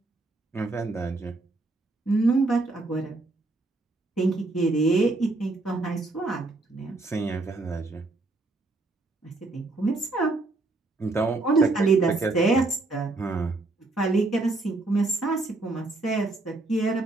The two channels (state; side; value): quieter; left; 3.1 dB